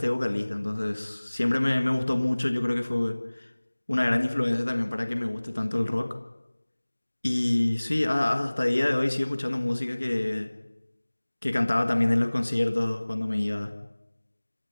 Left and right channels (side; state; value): both; inverted; correlation -1.00